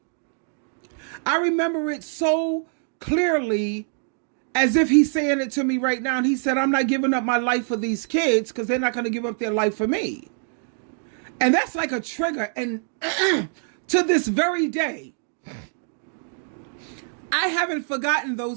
I remember it so clearly, as if he's saying it to me right now. And he said, I'm not giving up my life for these kids because they're not going to give up their life for me. And that's like a trigger. And to this very day, I haven't forgotten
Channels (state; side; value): silent; left; 62 dB below the other